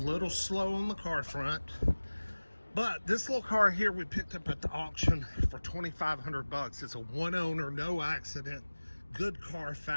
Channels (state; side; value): inverted; both; correlation -1.00